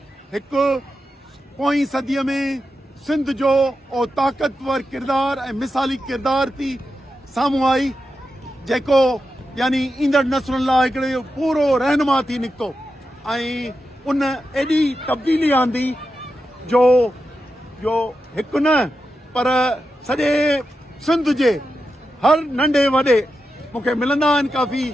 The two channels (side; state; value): both; normal; correlation 0.89